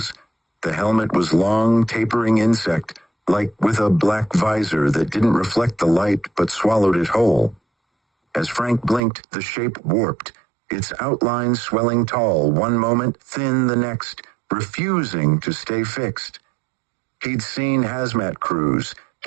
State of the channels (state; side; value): drops out; left; at 9.0 s